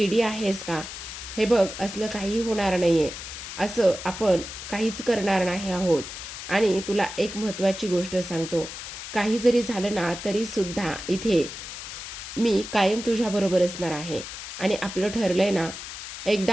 आहेस का, हे बघ असलं काही होणार नाही आहे, असं आपण काहीच करणार नाही आहोत. आणि तुला एक महत्त्वाची गोष्ट सांगतो, काही जरी झालं ना तरीसुद्धा इथे मी कायम तुझ्याबरोबर असणार आहे. आणि आपलं ठरलं आहे ना,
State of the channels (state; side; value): noise; left; hiss, 10 dB below the sound